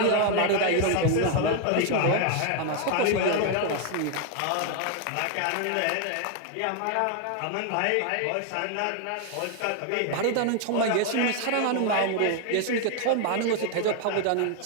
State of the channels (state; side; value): different; both; correlation 0.01